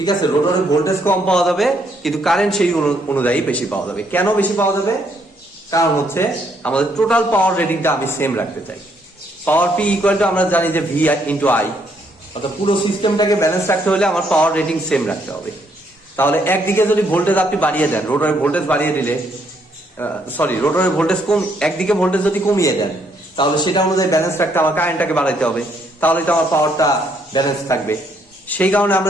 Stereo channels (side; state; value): both; normal; correlation 0.71